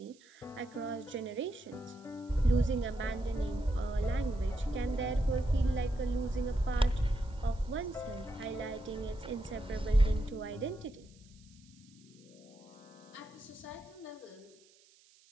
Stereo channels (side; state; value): right; noise; hiss, 28 dB below the sound